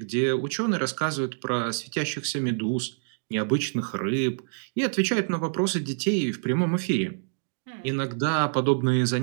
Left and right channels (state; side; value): silent; left; digital silence